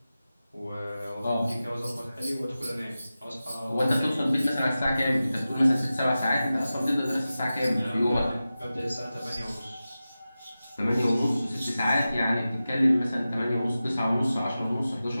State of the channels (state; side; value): inverted; both; correlation -0.94